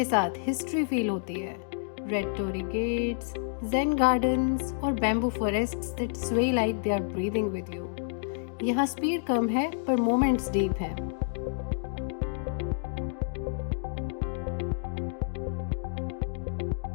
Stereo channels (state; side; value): silent; right; digital silence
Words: साथ हिस्ट्री फील होती है। Red torii gates, zen gardens और bamboo forests that sway like they are breathing with you. यहाँ स्पीड कम है पर मोमेंट्स डीप हैं।